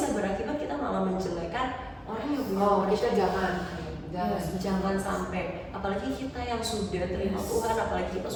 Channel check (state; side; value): identical; both; correlation 1.00